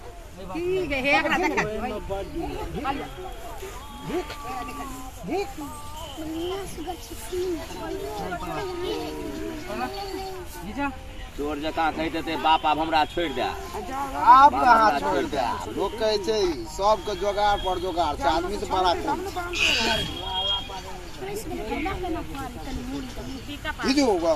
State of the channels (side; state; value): both; identical; correlation 1.00